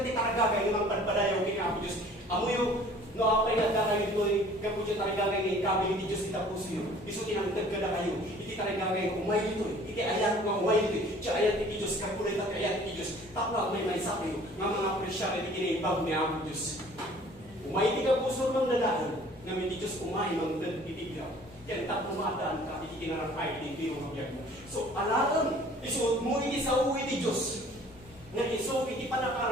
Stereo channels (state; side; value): normal; both; correlation 0.51